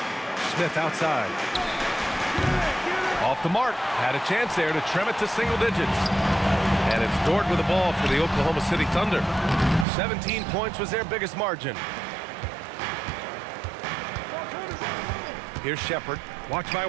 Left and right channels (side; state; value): left; drops out; at 9.9 s